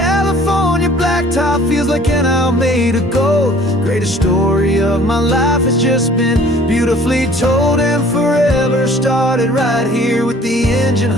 blacktop feels like an isle made of gold. Greatest story of my life has just been beautifully told, and forever started right here with the engine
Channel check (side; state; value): both; normal; correlation 0.53